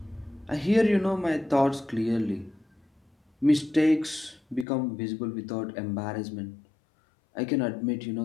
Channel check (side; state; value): right; drops out; at 4.7 s